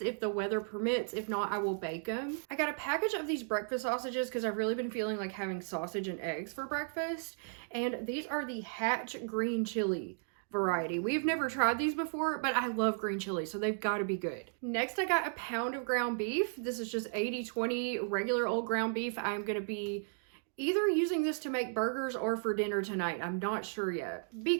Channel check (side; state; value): left; silent; digital silence